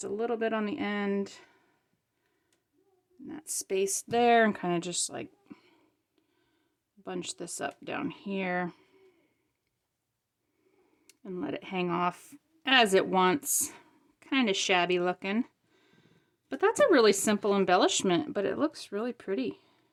a little bit on the end. And that space there, and kind of just like bunch this up down here. And let it hang off as it wants. Kind of shabby looking. But that's a really simple embellishment, but it looks really pretty.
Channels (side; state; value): both; identical; correlation 1.00